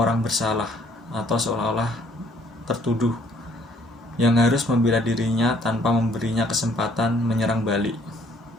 bersalah atau seolah-olah tertuduh yang harus membela dirinya tanpa memberinya kesempatan menyerang balik.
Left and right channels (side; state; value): both; normal; correlation 0.62